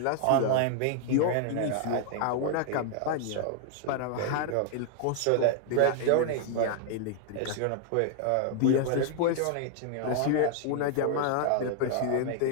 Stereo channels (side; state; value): both; different; correlation 0.00